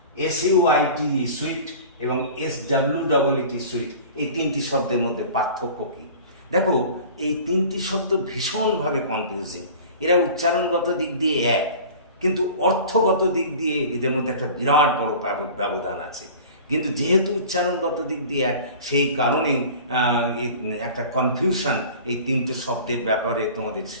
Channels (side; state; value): both; inverted; correlation -0.40